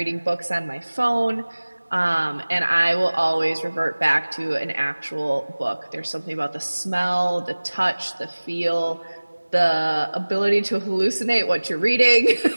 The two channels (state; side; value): inverted; both; correlation -1.00